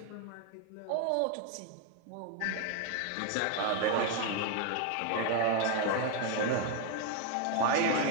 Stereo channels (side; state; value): both; different; correlation 0.01